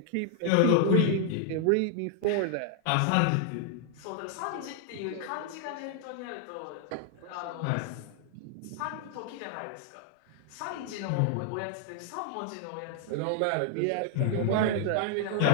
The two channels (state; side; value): different; both; correlation 0.00